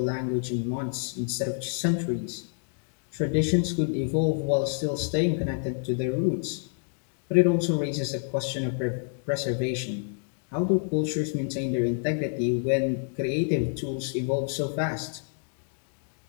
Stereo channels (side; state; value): right; silent; digital silence